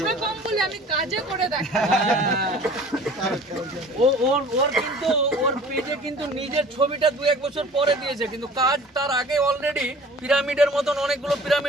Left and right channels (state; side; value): normal; both; correlation 0.46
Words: আমি কাজে করে দেখাই। ওর কিন্তু ওর পেজে কিন্তু নিজের ছবিটা 2-1 বছর পরে দিয়েছে, কিন্তু কাজ তার আগে অলরেডি পিরামিডের মতন অনেকগুলো